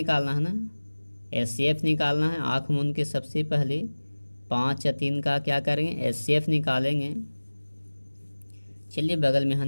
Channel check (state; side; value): inverted; both; correlation -1.00